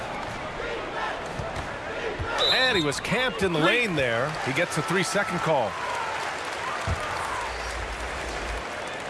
And he was camped in the lane there. He gets a 3-second call.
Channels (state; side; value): identical; both; correlation 1.00